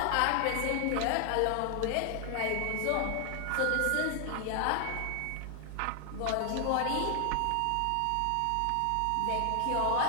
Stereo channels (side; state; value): both; different; correlation 0.00